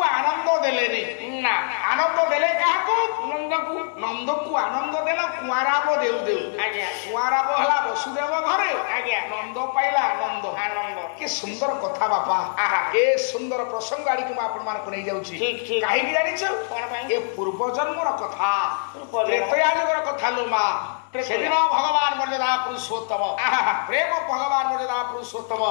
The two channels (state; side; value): silent; right; digital silence